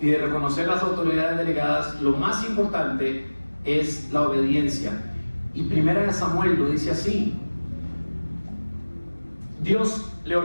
de reconocer las autoridades delegadas, lo más importante es la obediencia. Y 1 Samuel lo dice así: Dios le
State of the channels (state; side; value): inverted; both; correlation -1.00